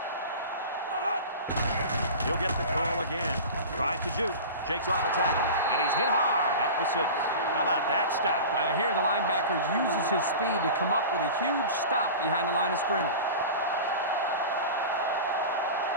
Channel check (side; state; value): both; inverted; correlation -0.33